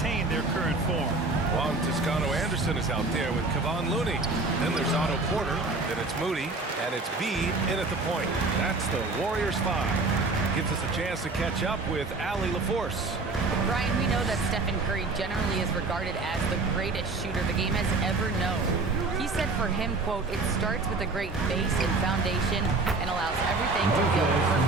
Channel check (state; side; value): quieter; left; 3.5 dB